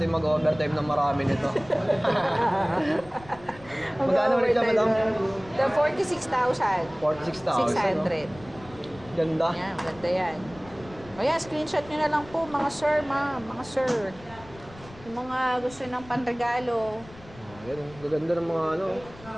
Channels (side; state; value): left; noise; rumble, 20 dB below the sound